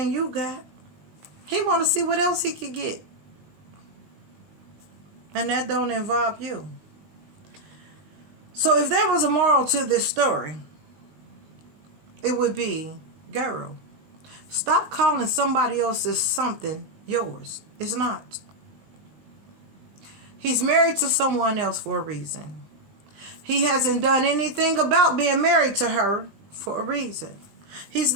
you got. He want to see what else he could get. And that don't involve you. So if there was a moral to this story, it would be, girl, stop calling somebody else's something yours. It's not. He's married to someone else for a reason. He hasn't done anything about being married to her for a reason. He's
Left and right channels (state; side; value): late; left; 20 ms